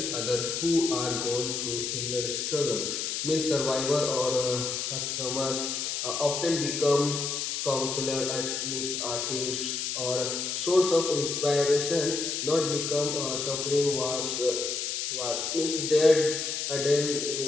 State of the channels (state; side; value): noise; left; hiss, 2 dB below the sound